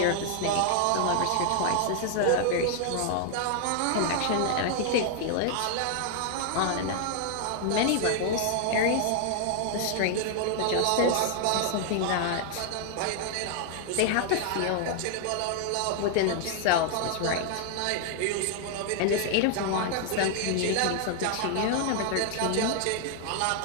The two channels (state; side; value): different; both; correlation 0.00